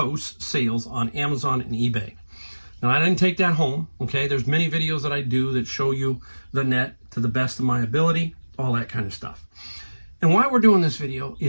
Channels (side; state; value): both; inverted; correlation -1.00